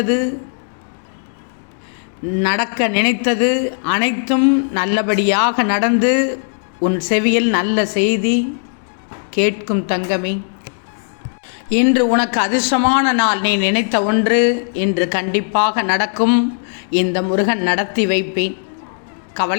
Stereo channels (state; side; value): silent; right; digital silence